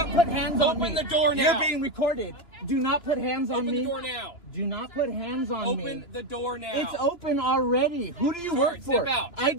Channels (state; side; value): late; right; 2.9 ms